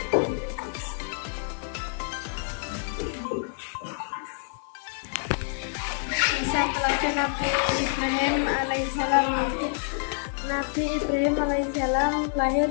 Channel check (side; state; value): right; silent; 60 dB below the other